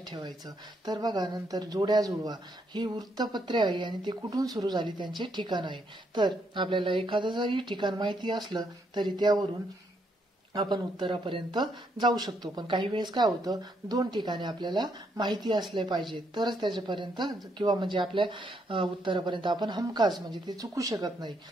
ठेवायचं. तर बघा नंतर जोड्या जुळवा, ही वृत्तपत्रे आहे आणि ते कुठून सुरू झाली त्यांचे ठिकाण आहे. तर आपल्याला एखादं जरी ठिकाण माहिती असलं तरी त्यावरून आपण उत्तरापर्यंत जाऊ शकतो. पण काही वेळेस काय होतं, 2 ठिकाणे आपल्याला माहिती असले पाहिजे तरच त्याच्यापर्यंत किंवा म्हणजे आपल्या उत्तरापर्यंत आपण हमखास म्हणजे ते चुकू शकत नाही.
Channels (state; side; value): normal; both; correlation 0.75